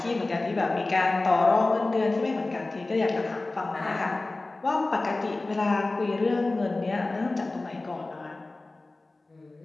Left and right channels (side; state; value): right; quieter; 3.1 dB